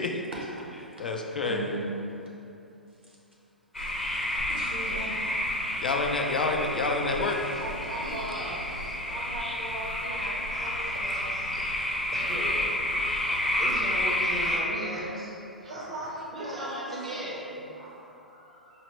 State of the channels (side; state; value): both; normal; correlation 0.37